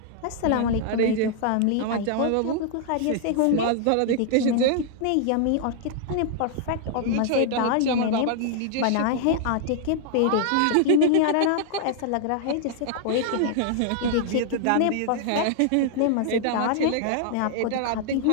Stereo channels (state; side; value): different; both; correlation -0.01